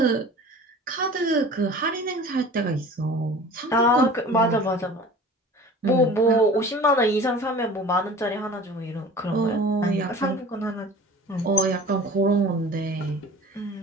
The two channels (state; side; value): normal; both; correlation 0.42